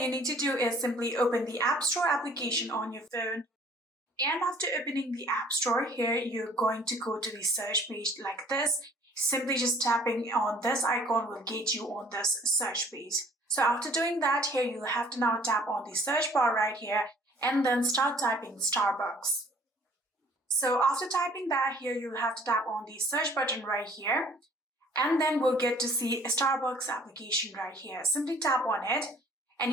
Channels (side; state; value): both; normal; correlation 0.55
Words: you need to do is simply open the App Store application on your phone. And after opening the App Store, here you're going to go to the search page like this. Simply just tapping on this icon will get you on this search page. So after doing that, here you'll have to now tap on the search bar right here and then start typing Starbucks. So after typing that, here you'll have to tap on the search button right here, and then we'll get to see a Starbucks application right here. Simply tap on it and